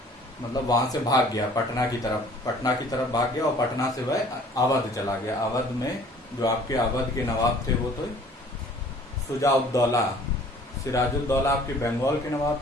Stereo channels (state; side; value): normal; both; correlation 0.52